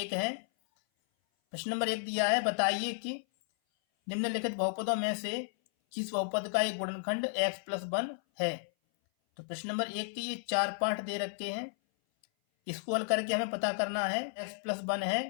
है। प्रश्न नंबर 1 दिया है, बताइए कि निम्नलिखित बहुपदों में से किस बहुपद का एक गुणनखंड x+1 है। तो प्रश्न नंबर 1 के ये 4 पार्ट दे रखे हैं। इसको हल करके हमें पता करना है x+1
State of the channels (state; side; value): silent; right; 56 dB below the other